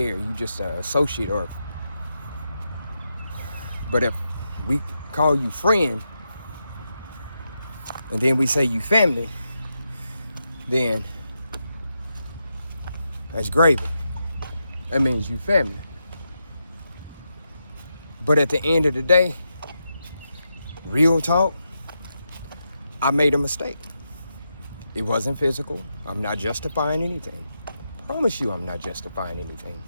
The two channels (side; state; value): both; inverted; correlation -0.85